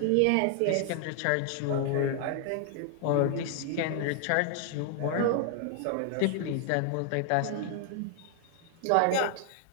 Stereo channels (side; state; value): both; different; correlation 0.00